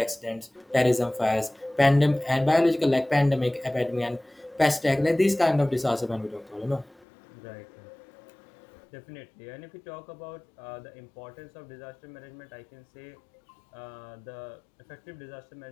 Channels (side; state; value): right; drops out; at 7.1 s